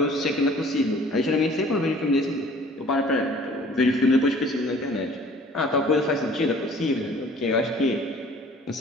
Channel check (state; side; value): normal; both; correlation 0.51